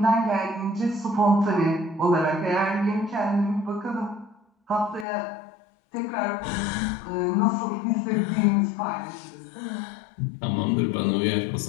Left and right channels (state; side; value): drops out; right; at 5.1 s